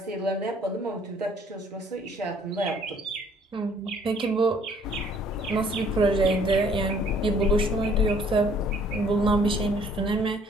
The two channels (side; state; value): both; normal; correlation 0.60